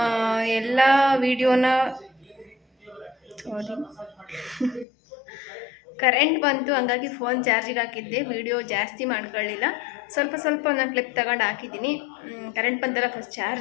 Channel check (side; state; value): right; drops out; at 4.9 s